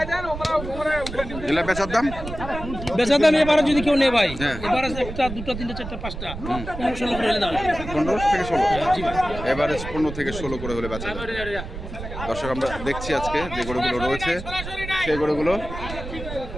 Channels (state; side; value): noise; right; rumble, 9 dB below the sound